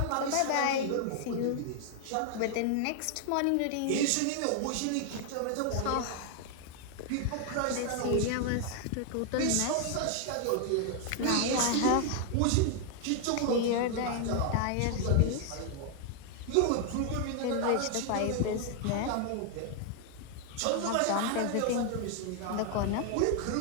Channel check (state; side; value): different; both; correlation 0.00